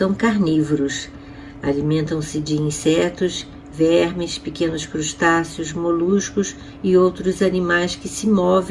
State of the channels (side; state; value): both; identical; correlation 1.00